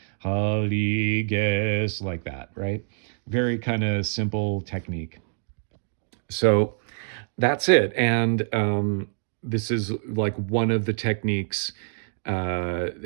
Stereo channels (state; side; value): silent; left; digital silence